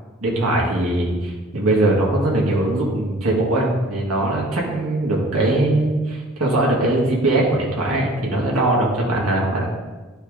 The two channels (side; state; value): both; normal; correlation 0.48